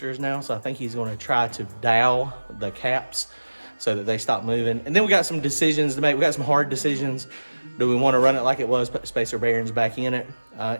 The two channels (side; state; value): both; inverted; correlation -1.00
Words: now, so I think he's going to try to dowel the caps so that they stop moving. And then we got some decisions to make. We got some hard decisions. Do we want to run it like it was, put spacer bearings back in it?